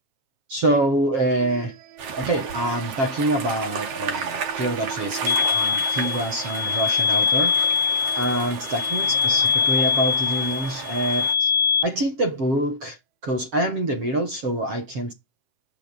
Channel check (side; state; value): left; late; 7.7 ms